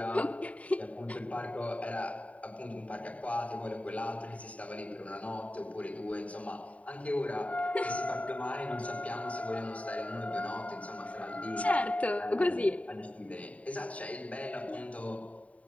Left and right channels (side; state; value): right; late; 0.067 ms